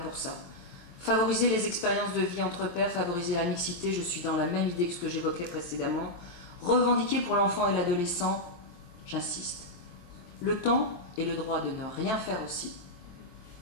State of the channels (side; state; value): right; late; 23 ms